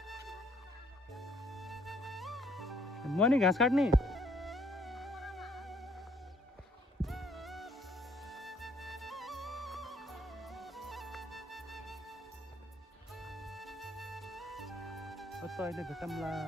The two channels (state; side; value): normal; both; correlation 0.64